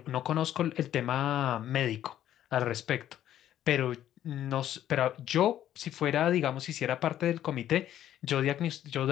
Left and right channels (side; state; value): right; quieter; 11.6 dB